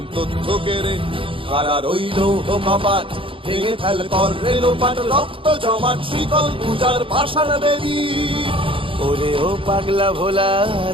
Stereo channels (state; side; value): late; left; 0.25 ms